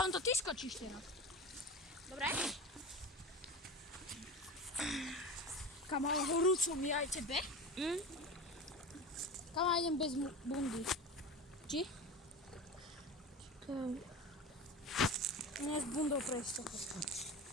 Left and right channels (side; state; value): both; normal; correlation 0.29